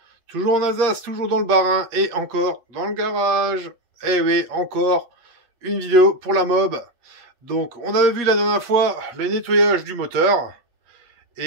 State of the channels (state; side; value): late; left; 8.4 ms